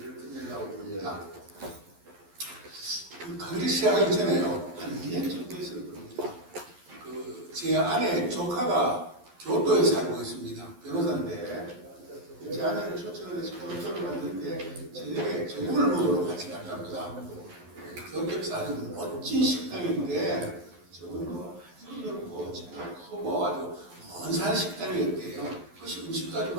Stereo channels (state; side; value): late; left; 11 ms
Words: 끝내려고 합니다. 그 강의를 시작하기 전에요. 한 2년 정도 됐을 겁니다. 제 아내 조카가 교토에 살고 있습니다. 변호사인데 제 아내를 초청을 해서 교토를 갔는데 저녁을 먹으러 같이 갔답니다. 교토에서 아주 멋진 식당인데 저번도 아주 넓고 크고 아주 먼산 식당이었대요. 그래서 음식도 아주